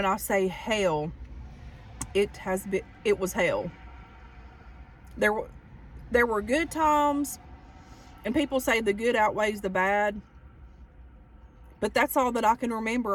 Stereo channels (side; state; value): both; identical; correlation 1.00